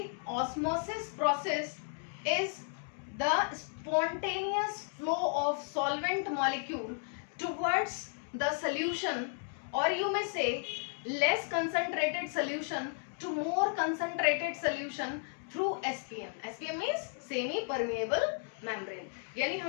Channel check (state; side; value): silent; right; 55 dB below the other